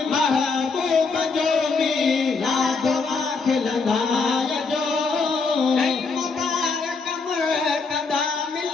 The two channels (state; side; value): quieter; right; 4.4 dB